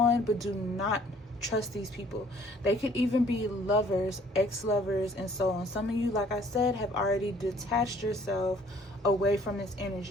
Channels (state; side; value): normal; both; correlation 0.58